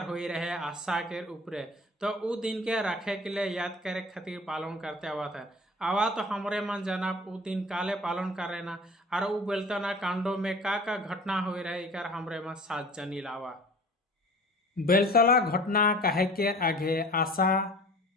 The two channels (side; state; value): both; normal; correlation 0.44